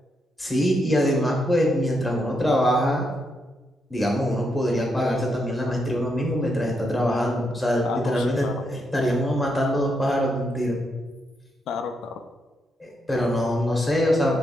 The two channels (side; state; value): both; normal; correlation 0.80